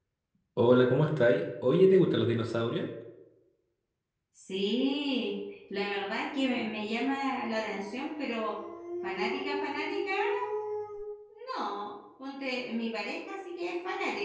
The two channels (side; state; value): both; identical; correlation 1.00